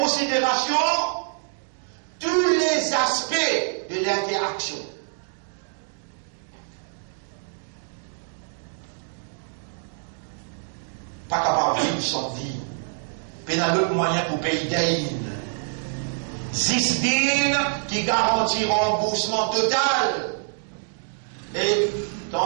tous les aspects de l'interaction. Pas capable de vivre sans dîne. Il y a d'autres moyens pour payer dîne. 6 dînes qui garantit remboursement total. Et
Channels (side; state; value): left; silent; 61 dB below the other